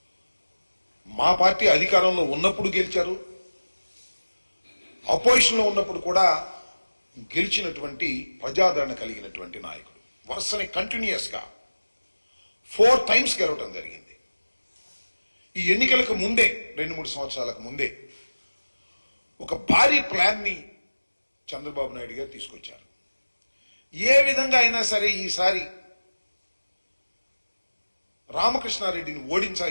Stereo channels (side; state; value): both; inverted; correlation -1.00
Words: మా పార్టీ అధికారంలో ఉన్నప్పుడు గెలిచారు, అపోజిషన్లో ఉన్నప్పుడు కూడా గెలిచినటువంటి ప్రజాదరణ కలిగినటువంటి నాయకుడు. వరుసని కంటిన్యూస్ గా 4 times గెలవడం జరిగింది. ఈ ఎన్నికలకు ముందే 2-3 సంవత్సరాలకు ముందే ఒక భారీ ప్లాన్ ని చంద్రబాబు నాయుడు గారు తీసుకొచ్చారు. ఏ విధంగా అయినా సరే ఈసారి రామకృష్ణారెడ్డిని